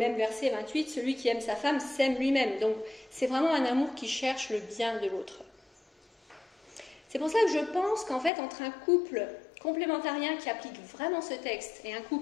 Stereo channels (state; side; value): drops out; right; at 8.3 s